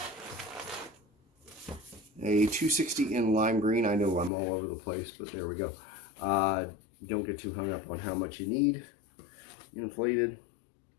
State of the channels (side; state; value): right; drops out; at 4.3 s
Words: a 260 in lime green. I know I'm all over the place, but there we go. Don't get too hung up on how much you need. Inflated.